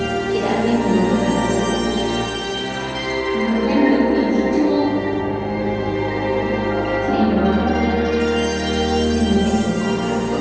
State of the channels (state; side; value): identical; both; correlation 1.00